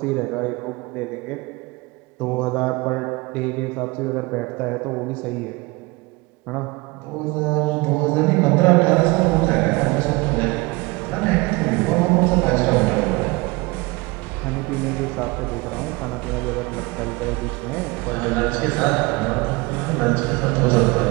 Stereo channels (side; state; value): left; quieter; 24.3 dB